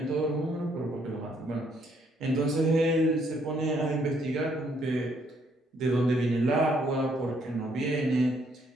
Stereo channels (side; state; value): both; normal; correlation 0.69